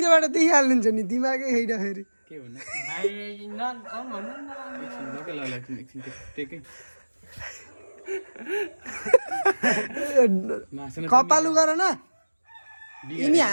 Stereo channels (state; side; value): inverted; both; correlation -1.00